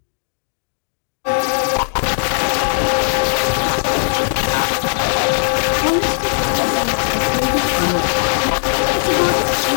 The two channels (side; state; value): right; silent; digital silence